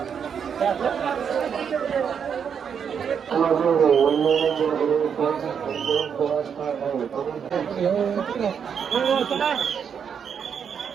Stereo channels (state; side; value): quieter; left; 7.3 dB